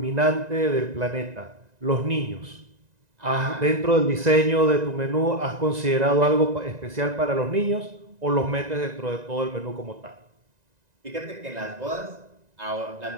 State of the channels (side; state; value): left; late; 1.9 ms